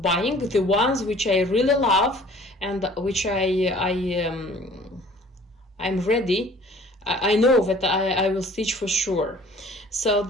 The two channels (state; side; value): normal; both; correlation 0.51